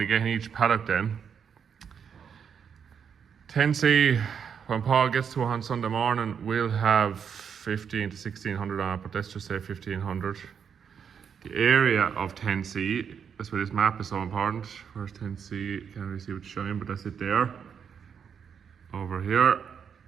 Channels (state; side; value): quieter; left; 7.3 dB